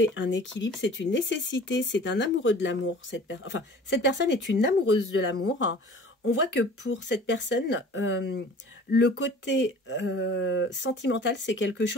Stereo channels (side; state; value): both; normal; correlation 0.45